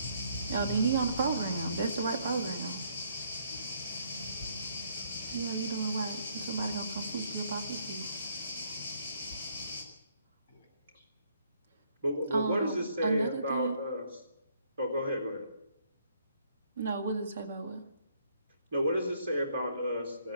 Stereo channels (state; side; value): inverted; both; correlation -0.67